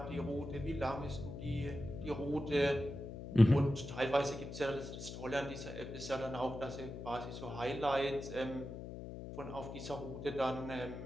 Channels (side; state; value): left; noise; hum, 9 dB below the sound